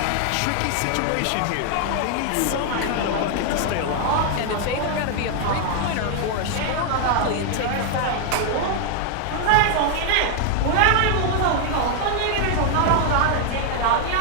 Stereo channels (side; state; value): both; different; correlation 0.00